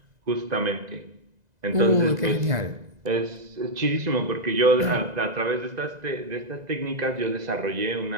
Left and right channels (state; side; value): late; left; 2.0 ms